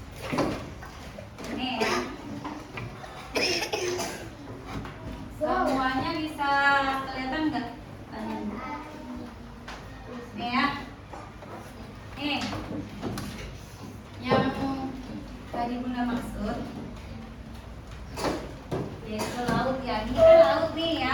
Nih ya. Semuanya bisa kelihatan nggak? Nih ya. Nih. Yang tadi Bunda maksud yaitu laut ya. Ini kan laut nih ya.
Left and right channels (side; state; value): both; identical; correlation 1.00